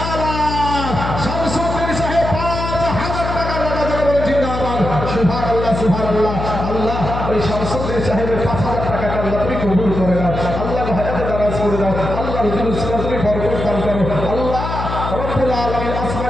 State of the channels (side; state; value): left; noise; hum, 5 dB below the sound